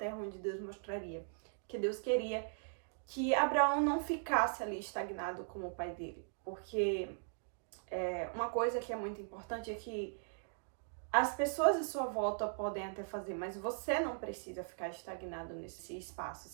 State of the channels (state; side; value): silent; left; digital silence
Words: onde Deus mostraria. Que Deus queria que Abraão não ficasse ali estagnado como o pai dele. Porque uma coisa que é muito importante é que as pessoas à sua volta podem até fazer, mas você não precisa ficar estagnado nesse espaço,